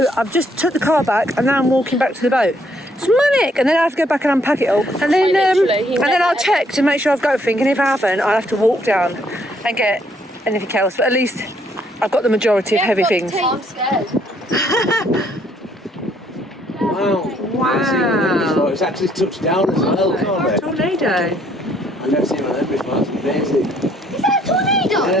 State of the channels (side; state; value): both; normal; correlation 0.68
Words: I've just took the car back, and now I'm walking back to the boat. It's manic, and then I have to go back and unpack it all, and then I'll check to make sure I've got everything, and if I haven't, I'll have to walk down and get anything else, but at least I've got the majority of heavy things. I'm scared. Wow. It's actually touched down as well, can't it? Tornado. I've never seen one of them before, that's amazing. Is that a tornado?